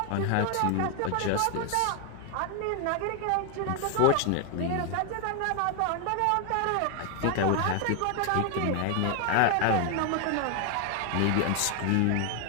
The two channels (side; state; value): both; different; correlation 0.01